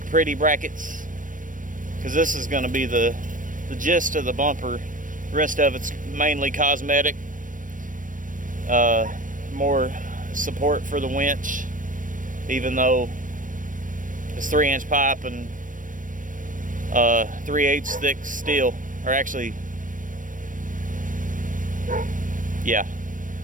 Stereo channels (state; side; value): late; left; 0.38 ms